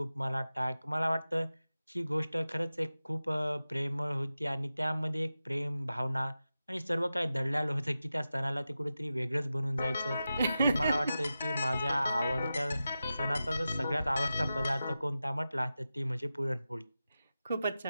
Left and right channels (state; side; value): inverted; both; correlation -0.93